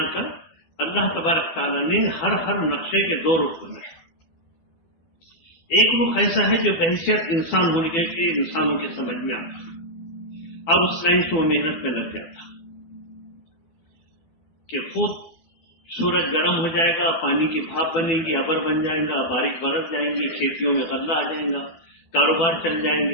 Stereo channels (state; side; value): late; right; 12 ms